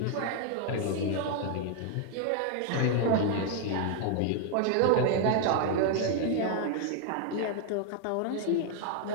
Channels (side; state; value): both; different; correlation 0.00